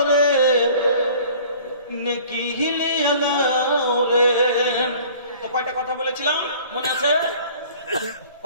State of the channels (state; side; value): inverted; both; correlation -0.49